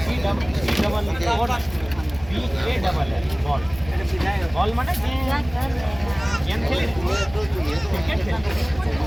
B double B A double বল বল মানে গেম খেলে ক্রিকেট খেলে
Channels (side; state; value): right; noise; rumble, 16 dB below the sound